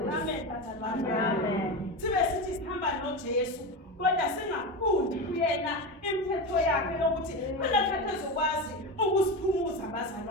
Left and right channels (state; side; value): normal; both; correlation 0.20